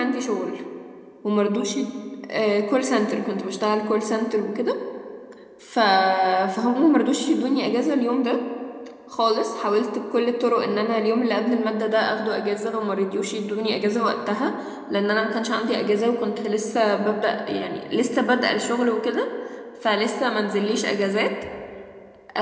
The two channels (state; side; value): identical; both; correlation 1.00